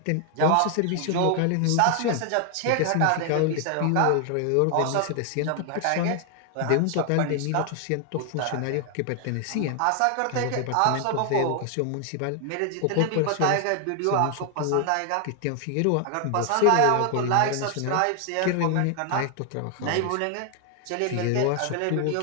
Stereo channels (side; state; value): both; different; correlation 0.00